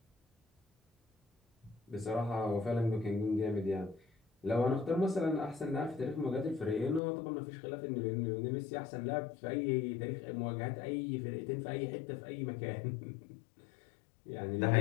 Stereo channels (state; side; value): drops out; right; at 7.0 s